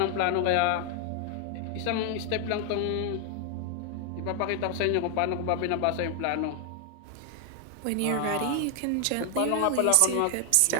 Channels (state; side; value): different; both; correlation 0.00